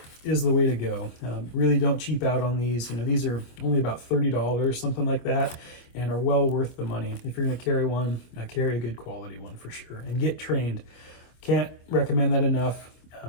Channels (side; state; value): right; late; 25 ms